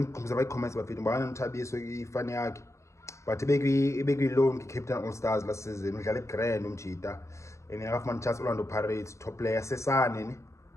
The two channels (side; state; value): right; late; 0.14 ms